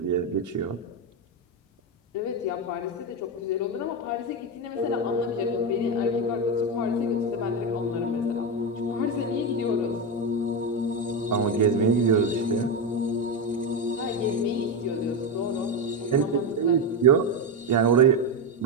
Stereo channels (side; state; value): both; normal; correlation 0.11